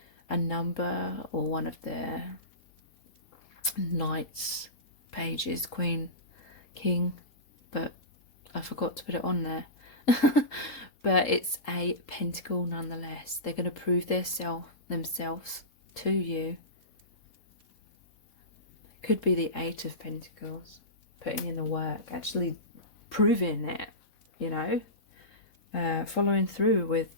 a number or one of their knights, pages, queen, king. But I forgot to put it on there. But it's a pentacle nonetheless. They're going to prove themselves to you. It could be the Eight of Pentacles. Putting in the work. Actually proving it. You know. Following through with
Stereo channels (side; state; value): right; late; 3.7 ms